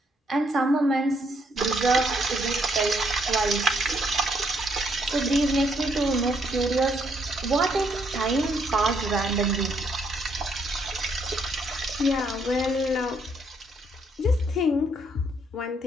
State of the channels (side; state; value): both; normal; correlation 0.72